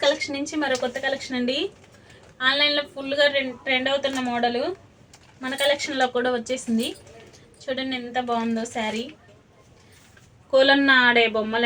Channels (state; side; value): identical; both; correlation 1.00